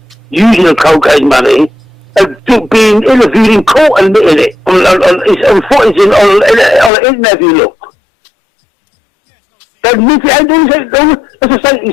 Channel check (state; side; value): drops out; right; at 6.9 s